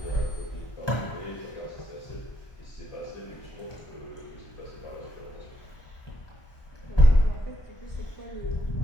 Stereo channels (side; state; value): right; late; 1.2 ms